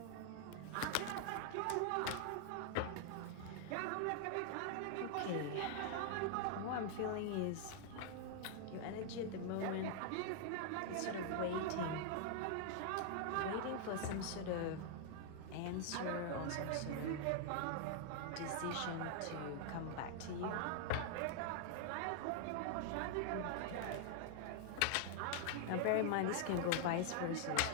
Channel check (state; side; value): different; both; correlation 0.00